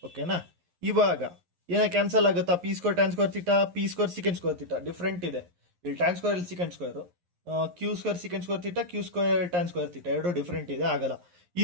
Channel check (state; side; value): late; left; 11 ms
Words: ಓಕೆನಾ? ಇವಾಗ ಏನ ಕ್ಯಾನ್ಸಲ್ ಆಗುತ್ತಾ? P square tan square theta, p square secant square theta different ಇದೆ. ಇಲ್ಲಿ ಟ್ಯಾನ್ ಸ್ಕ್ವೇರ್, ಇಲ್ಲಿ secant square. Q square secant square theta, q square tan square theta ಎರಡು ಡಿಫ್ರೆಂಟ್ ಇದೆ, ಆಗಲ್ಲ.